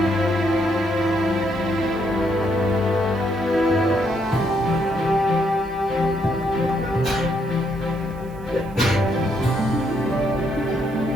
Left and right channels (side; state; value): right; noise; hiss, 29 dB below the sound